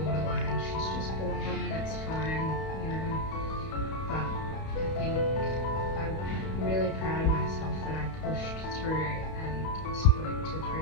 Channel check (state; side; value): late; right; 31 ms